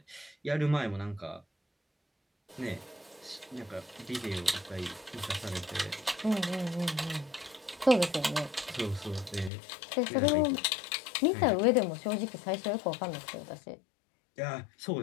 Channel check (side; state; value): right; drops out; at 9.5 s